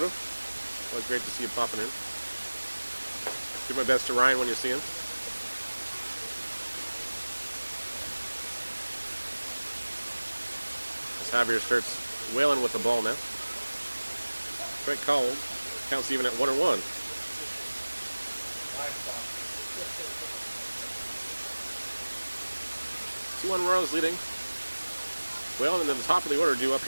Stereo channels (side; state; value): both; inverted; correlation -1.00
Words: Always great to see you popping in. Do my best to Ryan when you see him. As Javier starts wailing with the ball now. Strike called. Counts even at 1-1. 2-1 Royals leading. Well, and then the top of the order due up